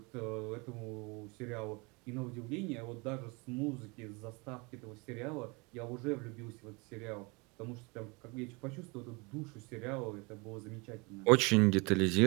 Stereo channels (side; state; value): left; quieter; 28.1 dB